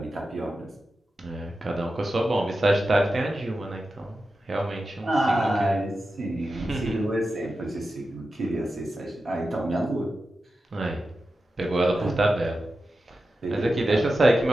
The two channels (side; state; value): both; normal; correlation 0.92